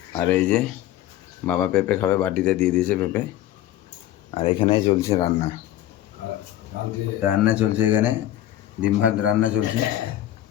আর এই যে বাবা পেঁপে খাবে, বাটিতে দিয়ে দিয়েছে পেঁপে। আর এখানে চলছে রান্না, রান্না চলছে এখানে ডিম ভাত রান্না চলছে।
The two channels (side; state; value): right; quieter; 13.0 dB